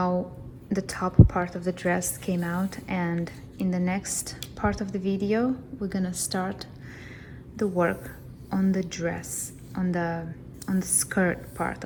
the top part of the dress came out, and in the next part of the video we're gonna start the work on the dress, on the skirt part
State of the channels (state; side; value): identical; both; correlation 1.00